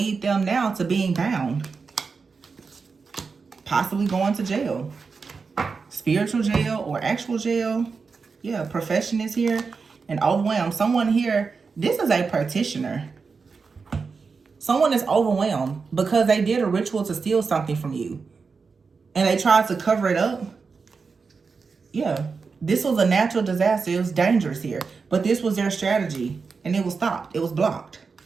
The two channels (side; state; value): left; quieter; 4.9 dB